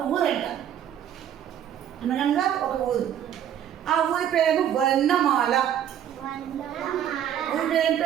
ఊరు. ఆ ఊరి పేరేమో వర్ణమాల. ఊరి పేరు ఏం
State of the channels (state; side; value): quieter; left; 10.0 dB